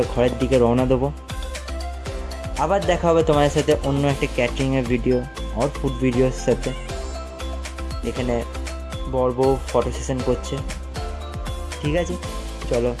ঘরের দিকে রওনা দেবো। আবার দেখা হবে তোমাদের সাথে অন্য একটা ক্যাটারিংয়ের ভিডিও আর ফুড ভিডিওর সাথে। এখানে বর বউ ফটো সেশন করছে। ঠিক আছে, চলো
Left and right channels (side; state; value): both; identical; correlation 1.00